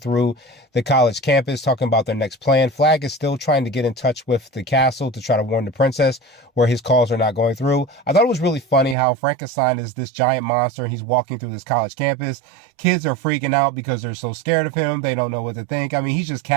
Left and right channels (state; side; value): drops out; left; at 9.0 s